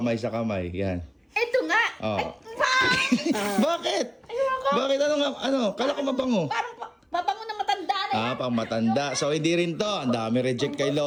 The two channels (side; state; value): both; identical; correlation 1.00